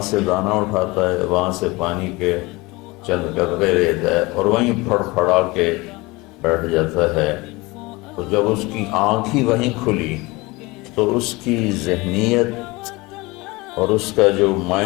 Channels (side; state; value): right; quieter; 23.2 dB